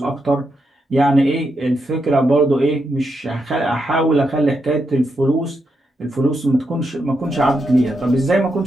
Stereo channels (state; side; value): normal; both; correlation 0.83